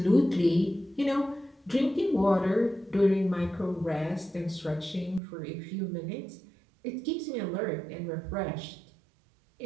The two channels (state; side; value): drops out; left; at 5.2 s